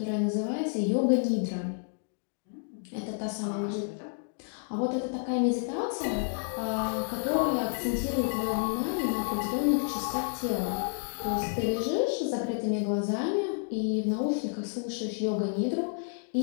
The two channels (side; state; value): right; silent; digital silence